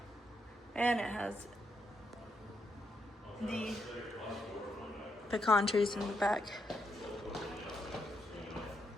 And it has the pecan trees in the back.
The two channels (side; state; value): both; normal; correlation 0.81